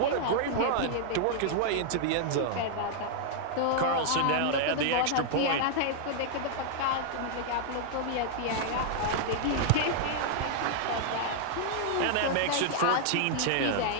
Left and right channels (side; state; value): both; different; correlation -0.01